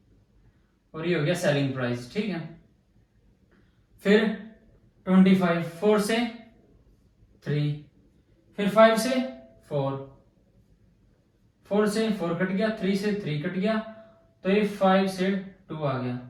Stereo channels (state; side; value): identical; both; correlation 1.00